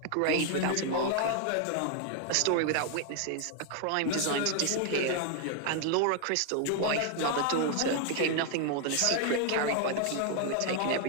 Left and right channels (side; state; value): both; different; correlation 0.00